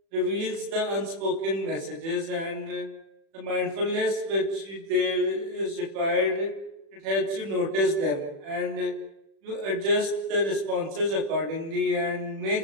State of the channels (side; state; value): left; late; 36 ms